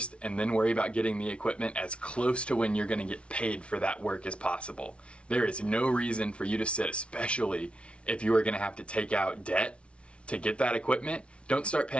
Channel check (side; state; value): right; late; 0.060 ms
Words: and then worry about getting the equipment as close to when you're gonna get paid for that work as possible. There is no reason for you to sit, especially if you are gonna have to take out debt to get that equipment. Don't start